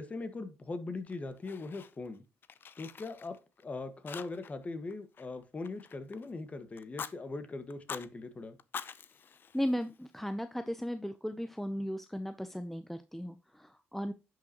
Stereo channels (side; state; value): both; normal; correlation 0.90